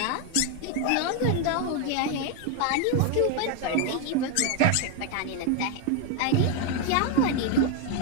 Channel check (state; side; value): different; both; correlation 0.01